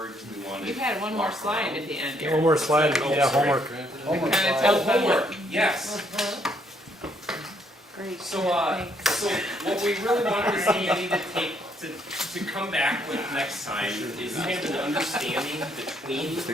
do we want to? You had one more slide at the end. Yeah, one more slide, Oh, yeah, sorry. homework. Homework Kind of slide. tell Oh, homework, yes. Great. So what we really wanted to see you need to take, to come back with next time is kind of an understanding between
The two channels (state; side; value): normal; both; correlation 0.70